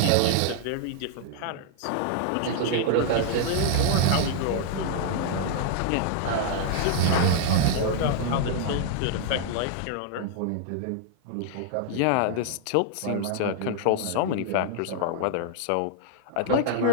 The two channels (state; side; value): different; both; correlation -0.01